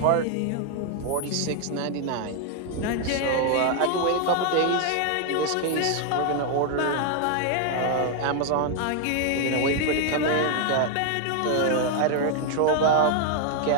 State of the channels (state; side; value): different; both; correlation 0.00